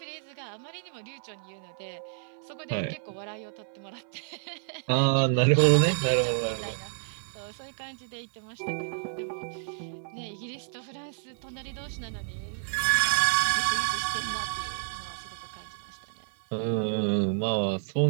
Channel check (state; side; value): silent; left; 58 dB below the other